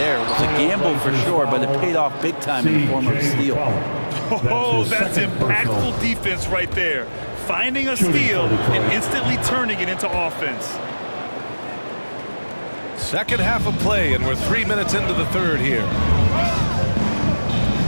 It was a gamble for sure, but it paid off big time in the form of a steal. Oh, that's impactful defense right there. Finding a steal and instantly turning it into offense. Second half of play, and we're 3 minutes into the third here.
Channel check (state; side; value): inverted; both; correlation -1.00